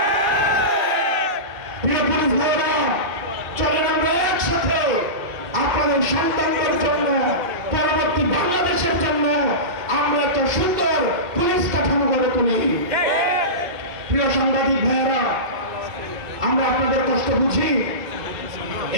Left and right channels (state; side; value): late; left; 2.8 ms